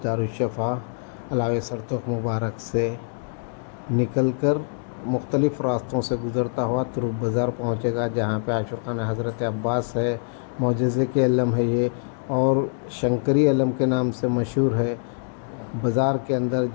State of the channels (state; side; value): silent; right; digital silence